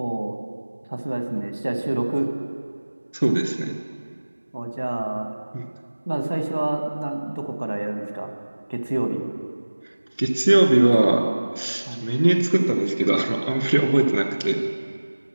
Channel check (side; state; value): both; inverted; correlation -1.00